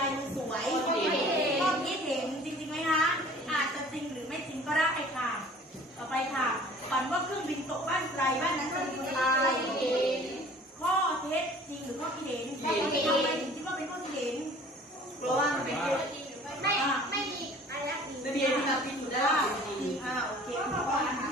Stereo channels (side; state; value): both; normal; correlation 0.49